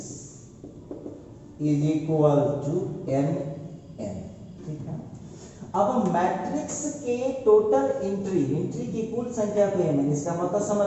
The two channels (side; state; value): both; identical; correlation 1.00